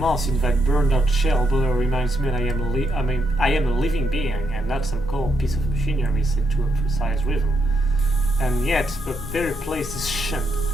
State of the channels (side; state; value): both; normal; correlation 0.79